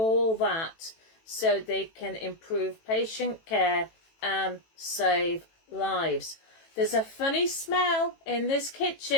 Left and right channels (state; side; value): late; right; 18 ms